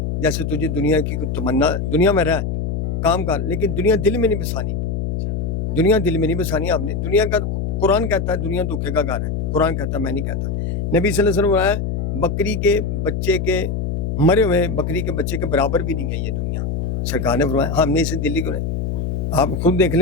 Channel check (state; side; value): noise; left; hum, 1 dB below the sound